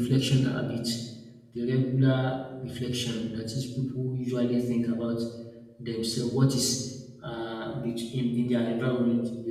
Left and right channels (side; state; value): both; identical; correlation 1.00